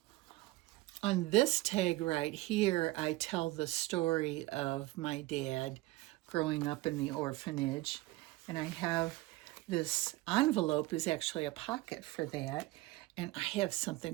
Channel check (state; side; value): quieter; left; 19.4 dB